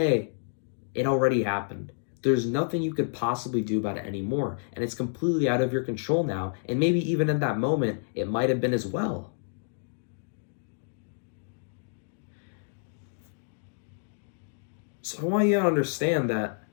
it already happened. There's nothing you could possibly do about it anymore. And it's completely out of your control now. And maybe even in that moment, it might have been as well. So I want you to understand that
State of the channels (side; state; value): right; silent; digital silence